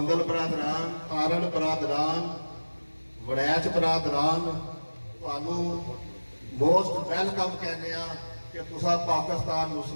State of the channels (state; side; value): inverted; both; correlation -1.00